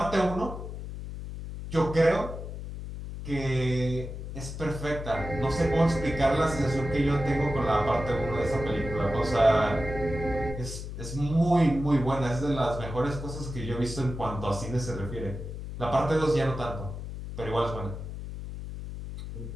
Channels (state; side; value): noise; left; hum, 8 dB below the sound